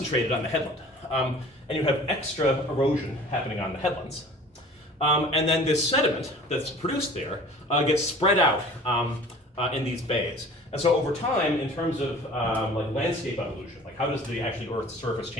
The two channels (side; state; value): both; normal; correlation 0.45